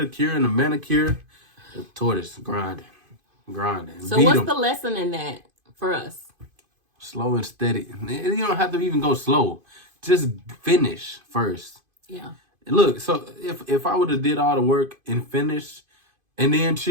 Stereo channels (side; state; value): left; late; 2.5 ms